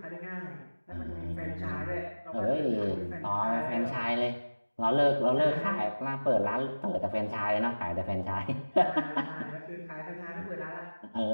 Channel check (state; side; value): inverted; both; correlation -1.00